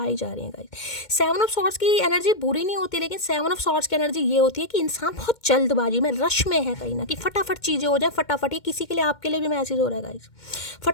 जा रही हैं गाइस। 7 ऑफ सॉर्ड्स की एनर्जी बुरी नहीं होती, लेकिन 7 ऑफ सॉर्ड्स की एनर्जी ये होती है कि इंसान बहुत जल्दबाजी में, रश में है कहीं ना कि फटाफट चीज़ें हो जाए, फटाफट। ये किसी के लिए, आपके लिए भी मैसेज हो रहा है गाइस,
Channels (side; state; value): right; late; 2.2 ms